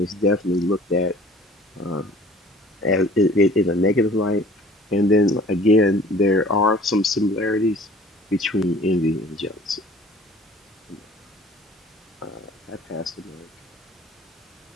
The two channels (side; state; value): both; normal; correlation 0.49